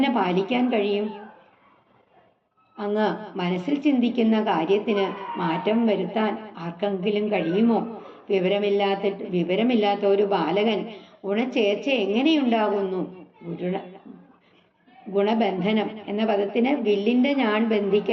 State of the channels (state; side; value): identical; both; correlation 1.00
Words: പാലിക്കാൻ കഴിയും? അങ്ങ് മനസ്സിൽ ചിന്തിക്കുന്ന കാര്യത്തിന് മാറ്റം വരുത്താൻ ആർക്കെങ്കിലും കഴിയുമോ? വിവരമില്ലാത്ത ഒരു ബാലകൻ ഗുണചേർച്ച എങ്ങനെയുണ്ടാകുന്നു? ഗുണബന്ധനം എന്ന പദത്തിന് വില്ലിന്റെ ഞാൻ